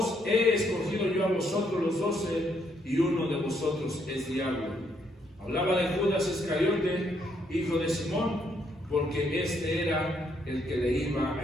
he escogido yo a vosotros los 12, y uno de vosotros es diablo. Hablaba de Judas Iscariote, hijo de Simón, porque este era el que le iba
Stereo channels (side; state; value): both; normal; correlation 0.72